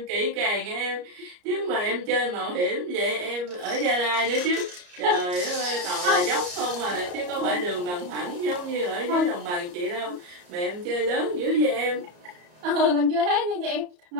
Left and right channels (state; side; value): late; left; 34 ms